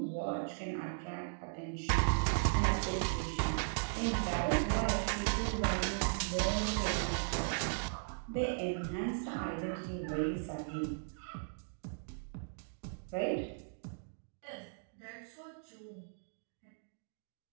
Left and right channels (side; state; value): left; silent; digital silence